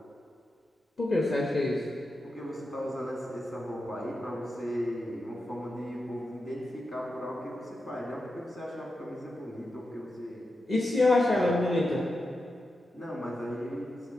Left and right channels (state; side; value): normal; both; correlation 0.89